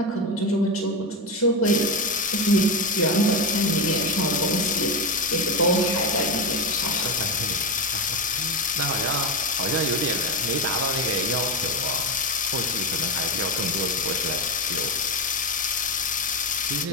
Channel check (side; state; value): both; normal; correlation 0.14